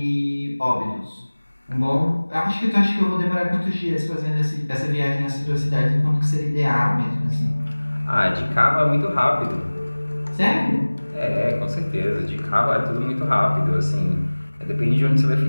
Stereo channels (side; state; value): both; inverted; correlation -1.00